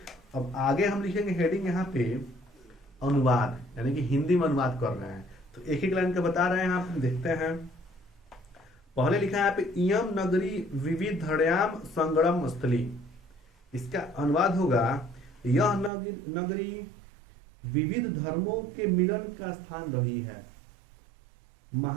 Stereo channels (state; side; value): drops out; left; at 15.9 s